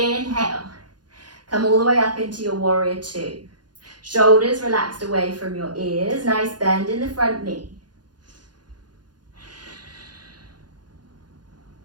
Come all the way up into your warrior two. Shoulders relaxed away from your ears. Nice bend in the front knee.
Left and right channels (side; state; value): left; late; 0.70 ms